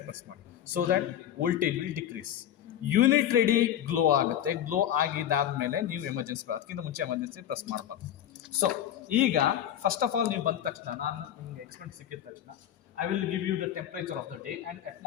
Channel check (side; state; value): right; quieter; 10.8 dB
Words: ಪ್ರೆಸ್ ಮಾಡಿ. So that voltage will decrease. Unit ready glow ಆಗುತ್ತೆ. ಗ್ಲೋ ಆಗಿದ್ದಾದ್ಮೇಲೆ ನೀವು ಎಮರ್ಜೆನ್ಸಿ, ಅದಕ್ಕಿಂತ ಮುಂಚೆ ಎಮರ್ಜೆನ್ಸಿ ಪ್ರೆಸ್ ಮಾಡಬಾರ್ದು. ಸೊ ಈಗ ಫಸ್ಟ್ ಆಫ್ ಆಲ್ ನೀವು ಬಂದ ತಕ್ಷಣ, ನಾನು ನಿಮಗೆ ಎಕ್ಸ್ಪೆಂಟ್ ಸಿಕ್ಕಿದ ತಕ್ಷಣ I will give you the temperature of the day and